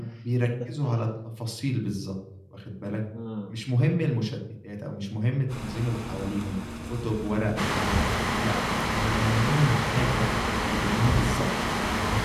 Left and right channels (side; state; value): both; identical; correlation 1.00